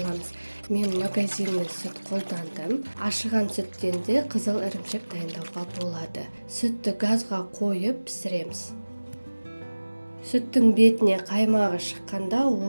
Мен магазинный сүт қолдандым. Ашыған сүттен де қызыл ірімшік дайындауға болады. Сүтті газға қойып пісіреміз. Сүттің бетіне қаймағы шыққанда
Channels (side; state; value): both; inverted; correlation -1.00